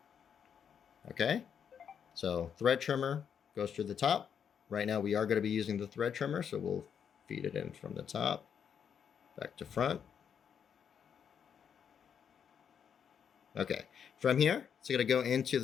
Okay, so thread trimmer goes through the top. Right now we are going to be using the thread trimmer, so we'll feed it in from the top, back to front. Okay, from here, it's going to go into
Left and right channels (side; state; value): right; quieter; 7.7 dB